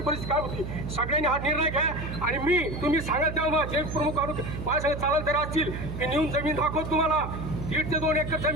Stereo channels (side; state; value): right; noise; hum, 6 dB below the sound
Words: परिस्थिती काय होती. सगळ्यांनी हा निर्णय घ्या आणि मी तुम्ही सांगाल तेव्हा जे प्रमुख माझ्याकडे चालत तरी असतील की नेऊन जमीन दाखवत तुम्हाला 1.5 ते 2 एकर